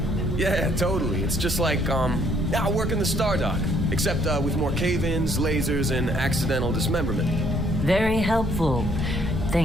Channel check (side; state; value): both; normal; correlation 0.65